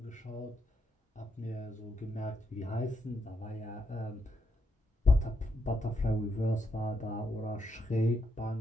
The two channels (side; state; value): both; normal; correlation 0.80